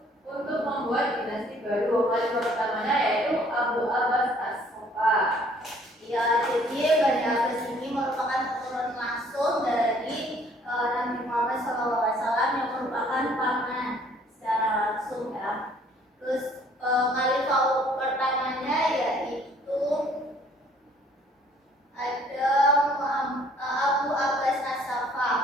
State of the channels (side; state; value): both; normal; correlation 0.59